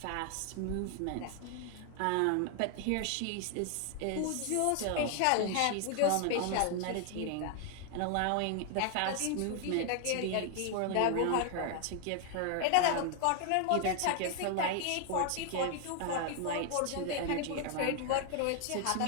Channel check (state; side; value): different; both; correlation 0.00